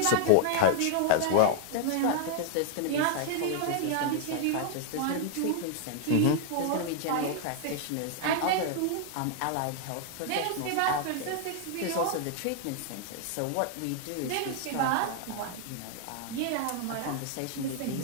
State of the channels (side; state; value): both; different; correlation 0.00